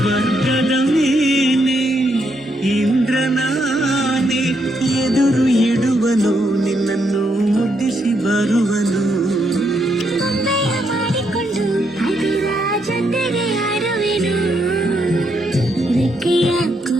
ಮೇಲೆ ಇಂದ್ರನಾನೆ ಎದುರು ಇಡುವನು, ನಿನ್ನನ್ನು ಮುದ್ದಿಸಿ ಬರುವನು. ಗೊಂಬೆಯ ಮಾಡಿಕೊಂಡು ಅದರ ಜೊತೆಗೆ ಆಡುವೆನು. ರೆಕ್ಕೆಯ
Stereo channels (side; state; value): both; normal; correlation 0.77